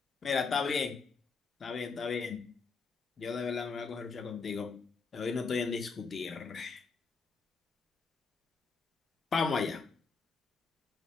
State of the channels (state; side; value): quieter; right; 4.9 dB